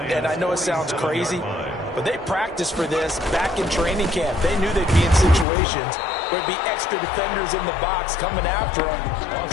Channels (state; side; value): drops out; right; at 5.5 s